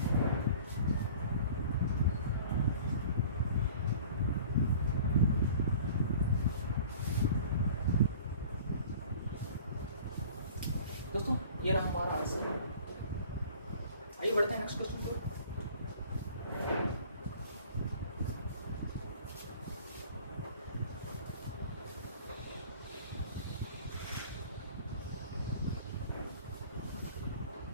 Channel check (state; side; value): inverted; both; correlation -0.46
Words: दोस्तों ये रहा हमारा आंसर। आइए बढ़ते हैं नेक्स्ट क्वेश्चन पर।